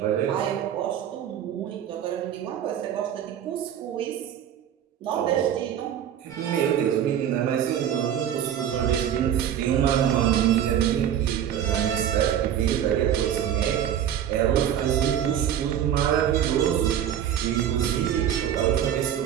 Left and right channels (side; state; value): left; quieter; 10.0 dB